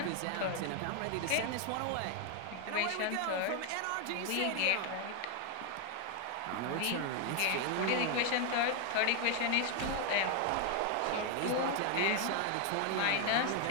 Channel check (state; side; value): different; both; correlation 0.00